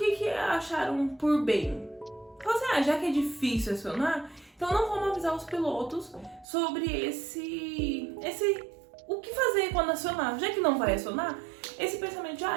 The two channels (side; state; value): left; drops out; at 6.5 s